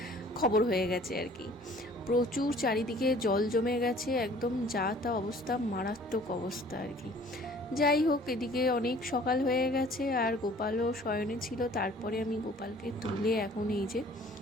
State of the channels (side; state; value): both; normal; correlation 0.52